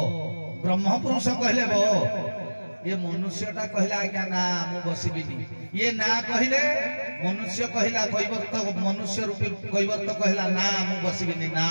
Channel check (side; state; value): both; inverted; correlation -1.00